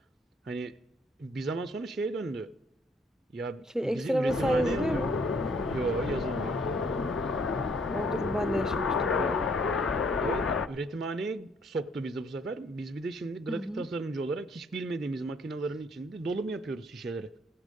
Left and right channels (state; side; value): normal; both; correlation 0.64